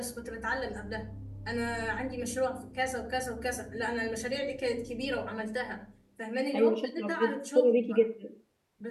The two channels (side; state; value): both; identical; correlation 1.00